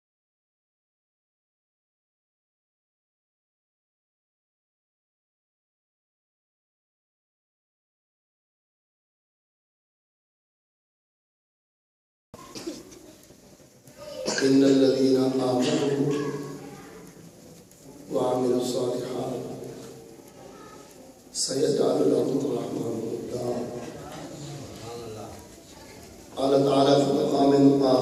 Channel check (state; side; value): identical; both; correlation 1.00